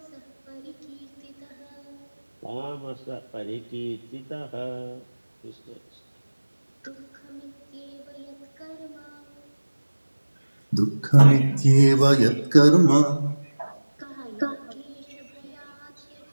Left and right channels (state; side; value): inverted; both; correlation -1.00